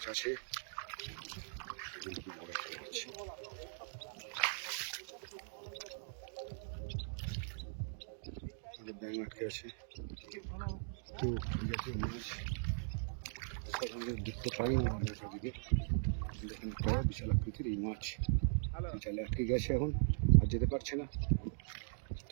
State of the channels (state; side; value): silent; left; digital silence